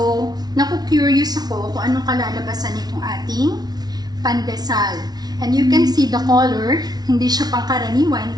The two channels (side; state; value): left; late; 0.19 ms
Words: naku-curious ako kung anong kalalabasan nitong ating pandesal. And you can see the color, hindi siya